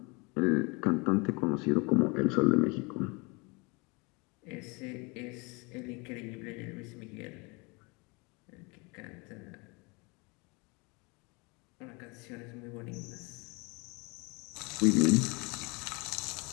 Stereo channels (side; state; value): right; quieter; 28.7 dB